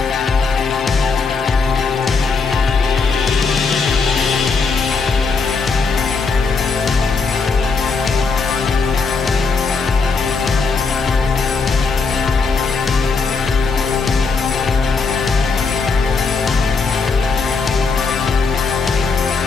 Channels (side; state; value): right; quieter; 4.6 dB